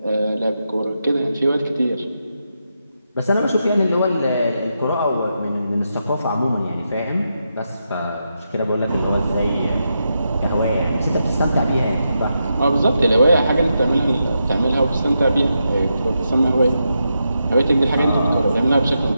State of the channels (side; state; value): both; inverted; correlation -0.85